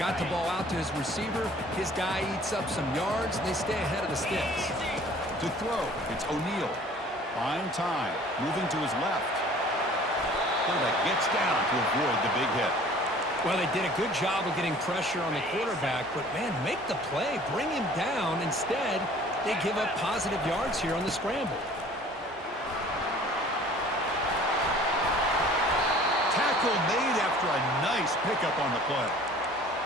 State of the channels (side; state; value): both; normal; correlation 0.50